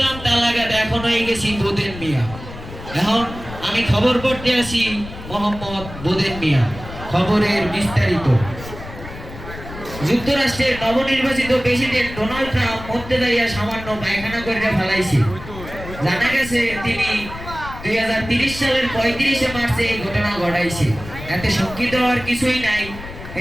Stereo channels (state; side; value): noise; left; rumble, 13 dB below the sound